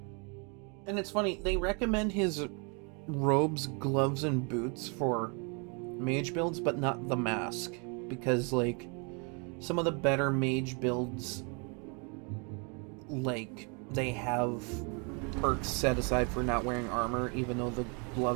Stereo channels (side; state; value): left; quieter; 34.7 dB